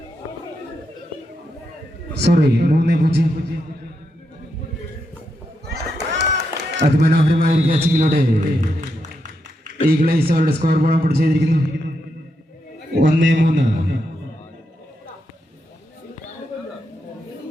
സോറി 3-0. അതിമനോഹരമായ ഒരു ക്യാച്ചിങ്ങിലൂടെ ഈഗിൾസ് അവരുടെ സ്കോർ ബോർഡ് പിടിച്ചു ചെയ്തിരിക്കുന്നു. 1-3.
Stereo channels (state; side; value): normal; both; correlation 0.83